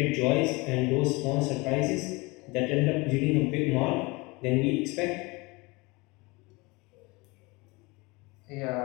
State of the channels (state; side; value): quieter; right; 25.1 dB